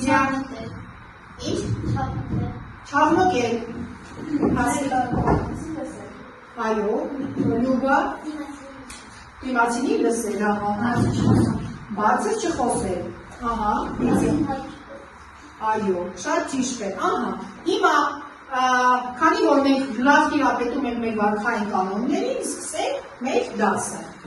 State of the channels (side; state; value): both; identical; correlation 1.00